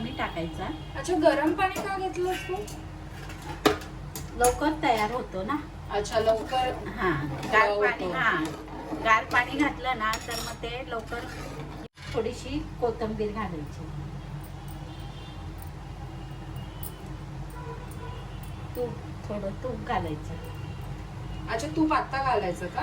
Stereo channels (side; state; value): both; identical; correlation 1.00